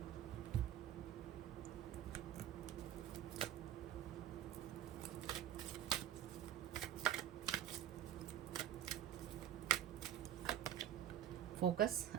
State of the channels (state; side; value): quieter; left; 11.1 dB